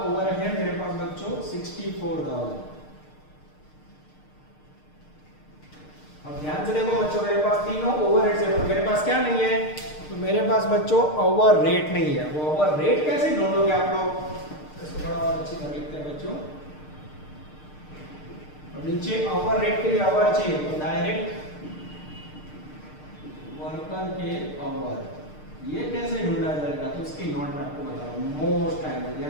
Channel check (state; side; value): late; right; 6.6 ms